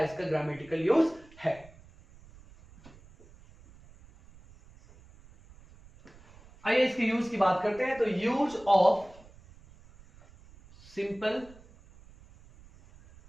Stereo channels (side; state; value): right; noise; rumble, 24 dB below the sound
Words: ग्रामेटिकल यूज है। आइए इसके यूज की बात करते हैं। तो use of simple